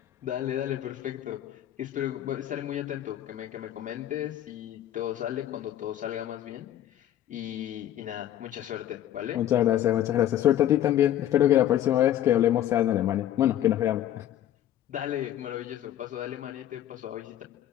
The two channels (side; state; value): right; quieter; 11.8 dB